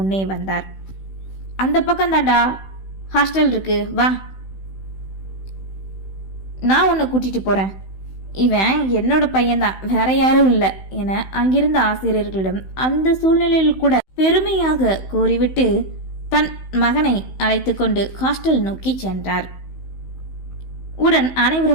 வந்தார். அந்த பக்கம் தாண்டா ஹாஸ்டல் இருக்கு, வா, நான் உன்னை கூட்டிட்டு போறேன். இவன் என்னோட பையன்தான், வேற யாரும் இல்லை என அங்கிருந்த ஆசிரியர்களிடம் அந்த சூழ்நிலையில் கூட பெருமையாக கூறிவிட்டு தன் மகனை அழைத்து கொண்டு ஹாஸ்டல் நோக்கி சென்றார். உடன்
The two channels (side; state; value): right; late; 16 ms